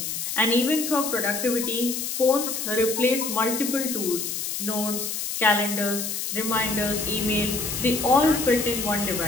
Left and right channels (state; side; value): noise; left; hiss, 3 dB below the sound